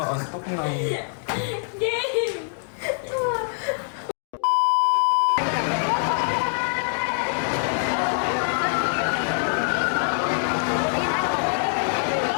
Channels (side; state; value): right; silent; digital silence